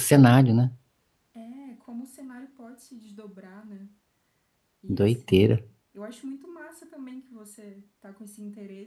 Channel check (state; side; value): identical; both; correlation 1.00